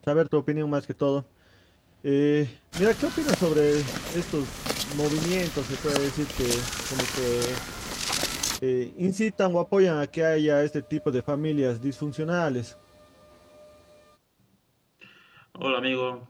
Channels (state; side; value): identical; both; correlation 1.00